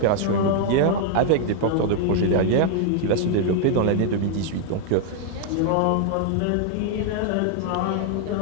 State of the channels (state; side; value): different; both; correlation 0.00